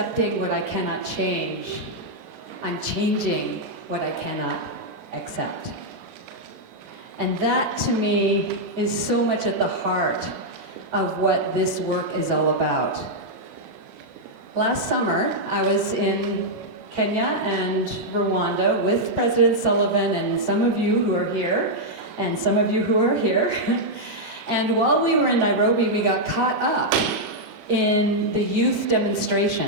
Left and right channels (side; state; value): left; late; 38 ms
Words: what I cannot change. I'm changing what I cannot accept." And that, to me, is so much at the heart of what this work is all about. Last summer, I was in Kenya and Rwanda with President Sullivan and some of you who are here, and some of you who are here. And while we were in Nairobi, we got caught up in the youth